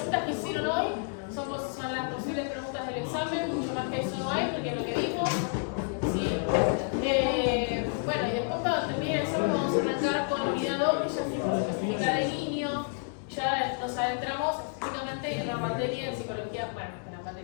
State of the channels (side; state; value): right; silent; 55 dB below the other